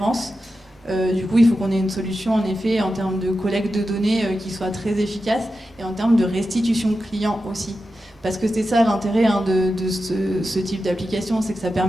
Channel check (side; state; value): both; normal; correlation 0.91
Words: du coup, il faut qu'on ait une solution, en effet, en termes de collecte de données qui soit très efficace et en termes de restitution client aussi. Parce que c'est ça l'intérêt de ce type d'application, c'est que ça